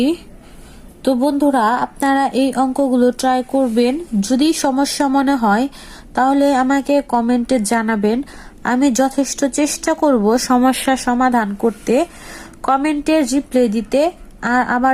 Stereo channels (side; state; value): both; identical; correlation 1.00